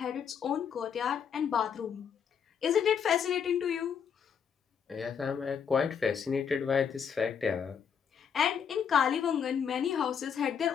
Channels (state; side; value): quieter; right; 7.4 dB